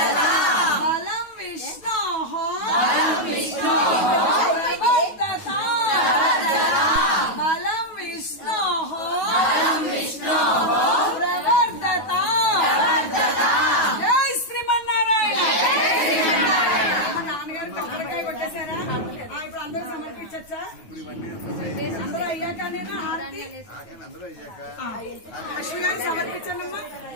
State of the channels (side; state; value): right; late; 9.3 ms